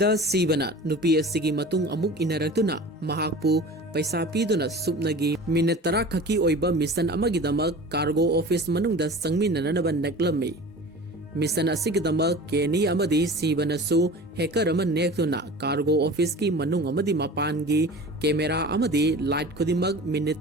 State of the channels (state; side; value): normal; both; correlation 0.38